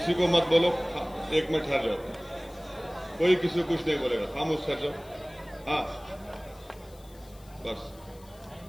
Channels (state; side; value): noise; left; hiss, 25 dB below the sound